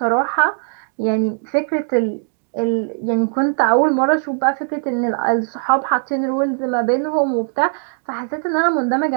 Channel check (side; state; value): left; silent; digital silence